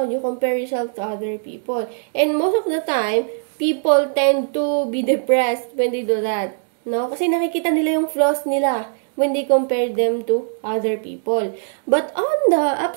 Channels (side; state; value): left; silent; digital silence